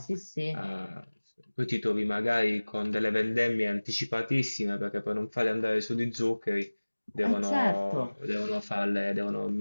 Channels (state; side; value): inverted; both; correlation -1.00